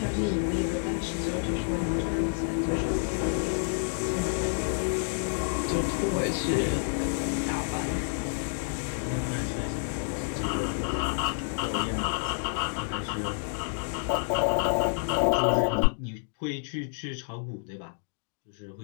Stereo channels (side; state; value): right; silent; digital silence